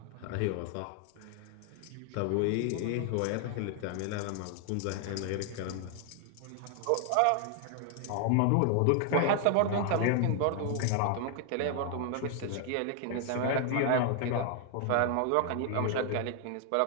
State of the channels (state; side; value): different; both; correlation 0.00